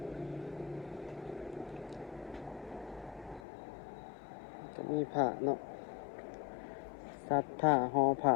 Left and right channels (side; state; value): right; drops out; at 3.4 s